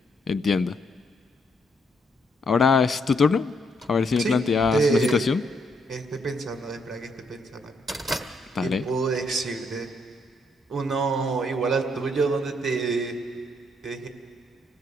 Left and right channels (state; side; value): normal; both; correlation 0.74